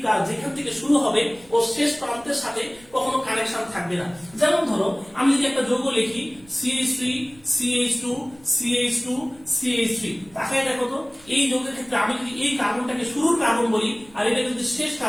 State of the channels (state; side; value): noise; right; rumble, 26 dB below the sound